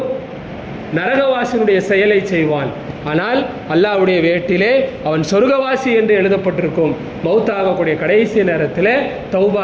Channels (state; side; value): identical; both; correlation 1.00